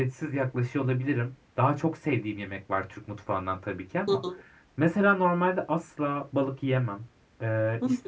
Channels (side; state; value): both; identical; correlation 1.00